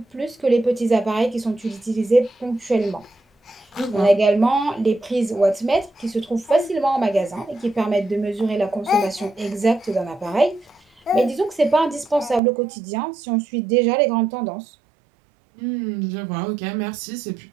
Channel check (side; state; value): left; drops out; at 12.4 s